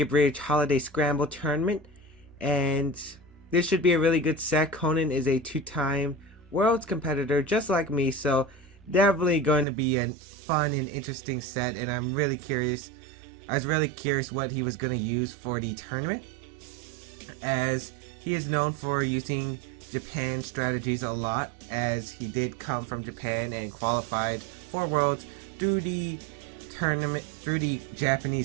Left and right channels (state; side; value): drops out; left; at 9.7 s